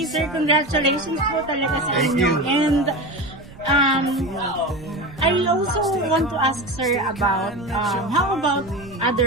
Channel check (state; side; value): noise; right; rumble, 19 dB below the sound